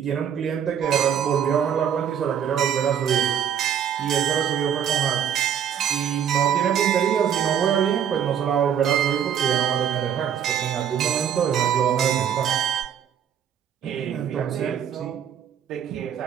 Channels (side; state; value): left; quieter; 8.9 dB